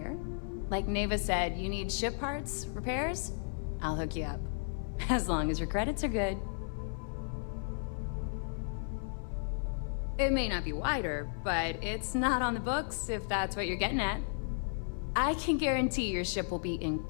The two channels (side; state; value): right; silent; 55 dB below the other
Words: Like Neva said, you need ship parts, repairs? I'll hook you up. As long as your credits are good. It may not be wider, but it's not on the books, if that's what you're getting at. I can guarantee your ship will be in